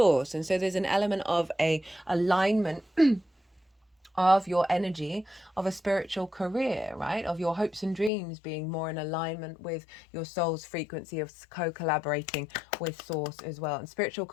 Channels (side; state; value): right; drops out; at 8.1 s